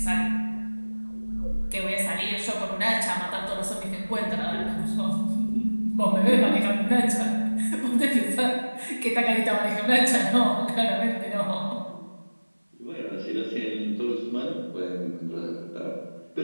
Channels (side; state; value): both; inverted; correlation -1.00